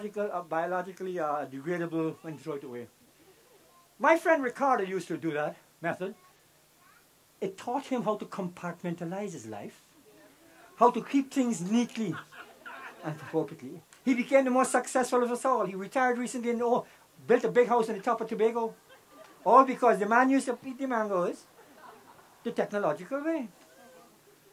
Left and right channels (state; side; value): identical; both; correlation 1.00